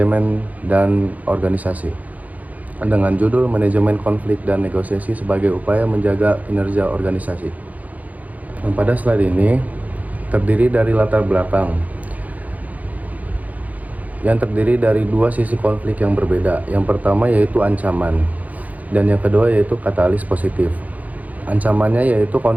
dan Organisasi dengan judul Manajemen Konflik dan Negosiasi sebagai upaya menjaga kinerja organisasi. Nah, pada slide ini terdiri dari latar belakang yang terdiri dari dua sisi konflik yang berbeda. Yang pertama yaitu ancaman, dan yang kedua yaitu katalis positif. Ancamannya yaitu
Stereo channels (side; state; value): left; late; 0.076 ms